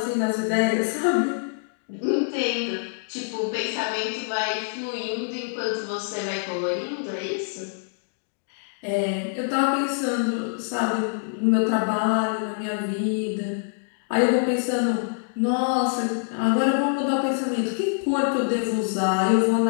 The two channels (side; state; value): right; silent; digital silence